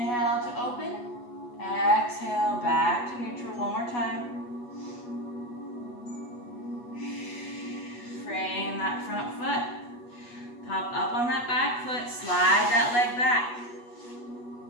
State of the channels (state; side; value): late; right; 8.2 ms